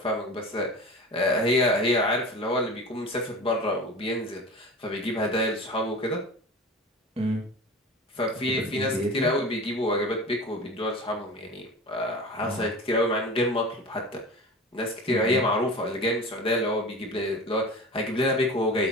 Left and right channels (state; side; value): normal; both; correlation 0.34